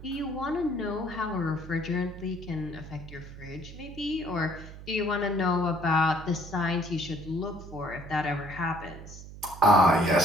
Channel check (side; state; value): right; noise; hum, 14 dB below the sound